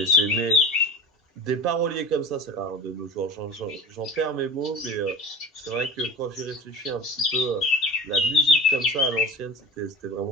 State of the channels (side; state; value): both; normal; correlation 0.34